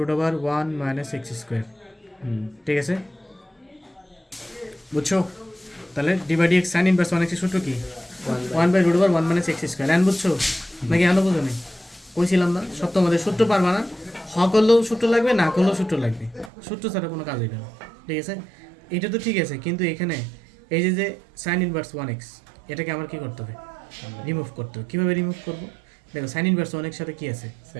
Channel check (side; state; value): left; drops out; at 16.5 s